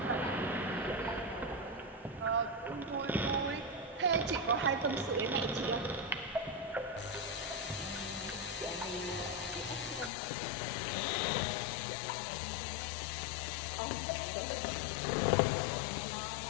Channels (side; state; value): right; drops out; at 10.1 s